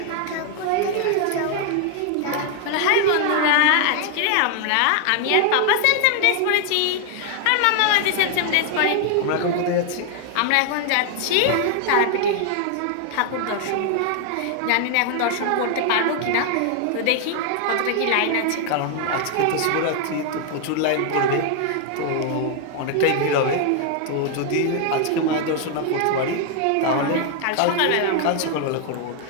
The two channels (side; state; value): both; different; correlation 0.00